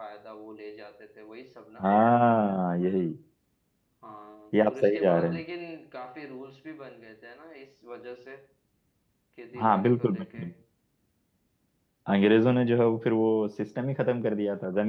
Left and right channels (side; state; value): both; identical; correlation 1.00